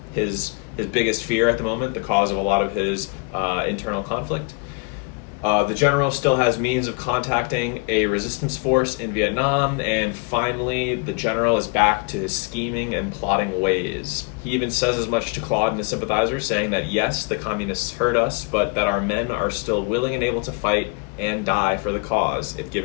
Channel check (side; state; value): right; quieter; 33.9 dB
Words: his biggest fear at the moment, the cause of a lot of his internal conflict. The general still has means of contacting a resistance force in Vietnam, and finally, the general is back to his scheming and plotting ways. He even says as much to Claude and the sympathizer, saying that yes, the communists hurt us, but that our men are still willing and able to fight and die for the cause if